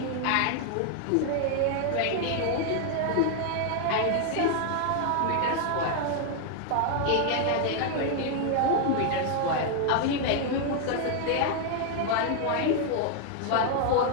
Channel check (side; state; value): both; different; correlation 0.00